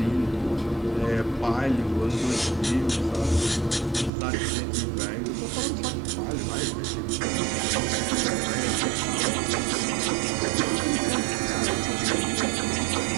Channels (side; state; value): left; drops out; at 4.1 s